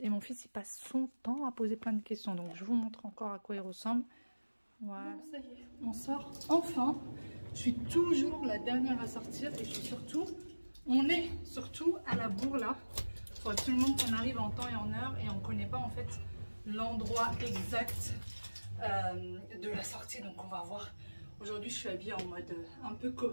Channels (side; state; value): both; inverted; correlation -1.00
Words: Et mon fils, il passe son temps à poser plein de questions. Donc je vous montre encore à quoi il ressemble. Voilà. Bon, ça y est, on sort enfin. Je suis toujours la dernière à sortir. Et on est surtout à la bourre là. Il faut absolument qu'on arrive en temps et en heure. Et on ne connaît pas en fait l'endroit exact de la sortie. Donc on va voir. Aujourd'hui, je suis habillée en mode un peu